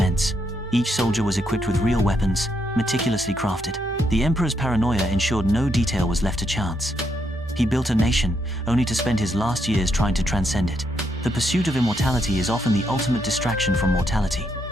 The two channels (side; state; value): both; normal; correlation 0.77